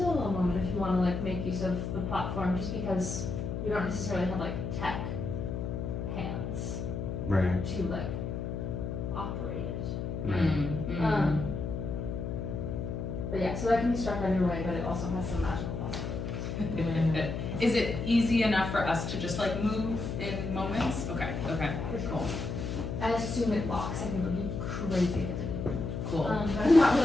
moment if you want to like make use of the platform, just because you don't necessarily have like tech hands Right. to like operate it. Right. But yeah, so that can be struck either way, but it also has some magical possibilities. Is it easy enough for us to just like move in moments? Okay, okay, cool, I assume it locks. I think it would be crazy if it didn't. cool. But I'm not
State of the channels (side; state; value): left; noise; hum, 4 dB below the sound